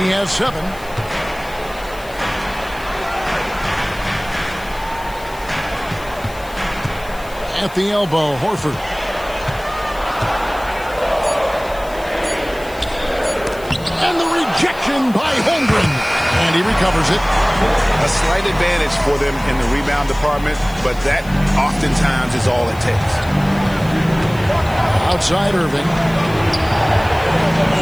has 7. At the elbow, Horford. And the rejection by Holmgren. And he recovers it. A slight advantage for them in the rebound department, but that oftentimes is all it takes. Outside Irving.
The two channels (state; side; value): noise; left; hiss, 21 dB below the sound